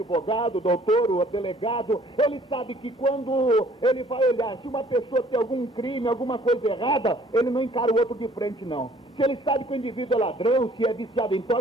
o doutor, o delegado, ele sabe que quando ele vai olhar, se uma pessoa tem algum crime, alguma coisa errada, ele não encara o outro de frente, não. Se ele sabe que o indivíduo é ladrão, se é viciado em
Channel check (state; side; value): normal; both; correlation 0.57